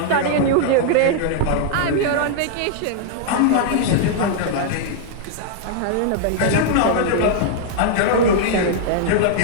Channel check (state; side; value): different; both; correlation 0.00